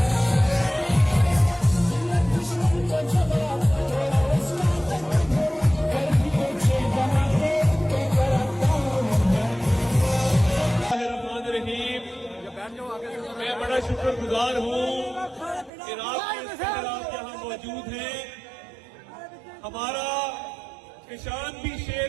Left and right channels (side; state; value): left; drops out; at 15.7 s